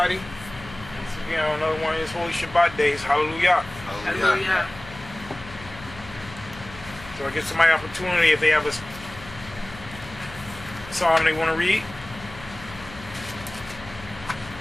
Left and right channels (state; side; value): noise; left; hum, 16 dB below the sound